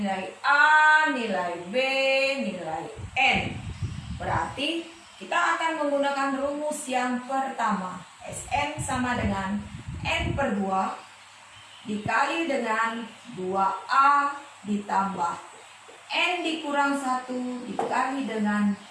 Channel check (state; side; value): identical; both; correlation 1.00